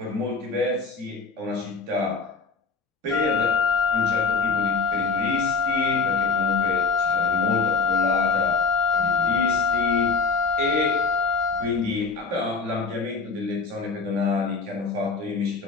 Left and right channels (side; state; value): right; quieter; 4.7 dB